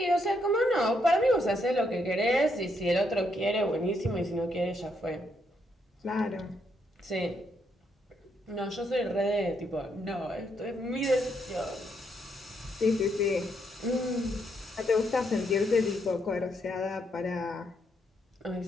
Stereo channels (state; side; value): normal; both; correlation 0.76